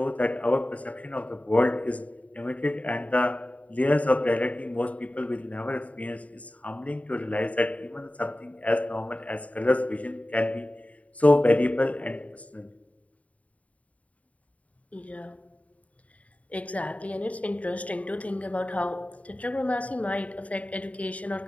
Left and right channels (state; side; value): late; right; 0.068 ms